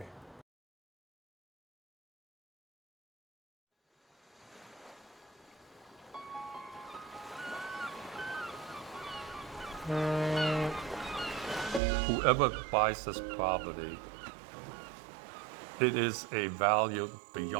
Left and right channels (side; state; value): left; drops out; at 11.8 s